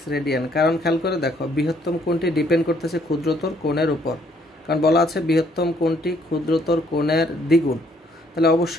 রেডিয়ান, কারণ খেয়াল করে দেখো বৃহত্তম কোণটি ডিপেন্ড করতেছে ক্ষুদ্রতর কোণের উপর, কারণ বলা আছে বৃহত্তম কোণটি ক্ষুদ্রতর কোণের দ্বিগুণ। তাহলে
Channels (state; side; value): normal; both; correlation 0.66